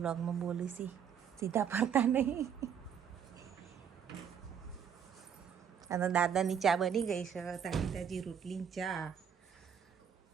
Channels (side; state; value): left; quieter; 7.9 dB